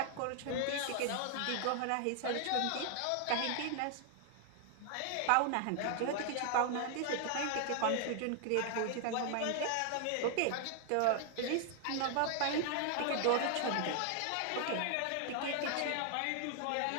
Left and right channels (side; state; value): both; different; correlation 0.00